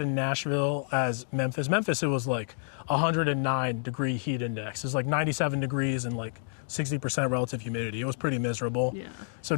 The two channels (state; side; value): silent; right; digital silence